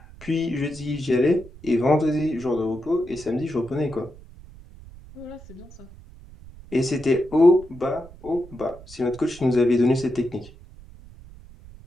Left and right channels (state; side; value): noise; right; rumble, 19 dB below the sound